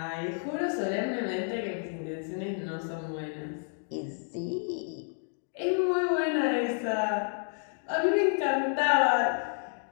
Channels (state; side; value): silent; right; 58 dB below the other